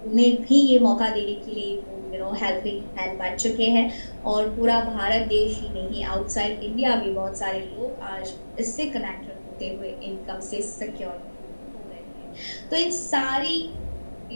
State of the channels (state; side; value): inverted; both; correlation -1.00